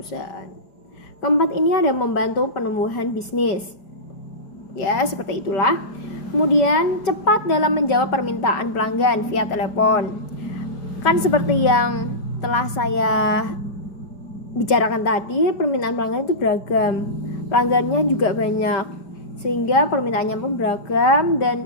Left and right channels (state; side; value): late; right; 4.9 ms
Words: Keempat ini ada membantu penumbuhan bisnis. Ya, seperti itulah. Kemudian cepat dalam menjawab permintaan pelanggan via telepon. Kan seperti yang telah saya bicarakan tadi, permintaan pelanggan itu beragam, pelanggannya juga banyak, sehingga permintaannya pun beragam.